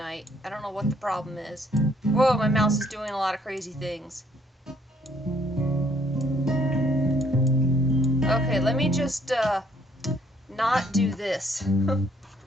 I don't know what the problem is. Whoa, my mouse is doing a lot of crazy things. Okay, let me just, not do this.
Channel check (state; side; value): normal; both; correlation 0.65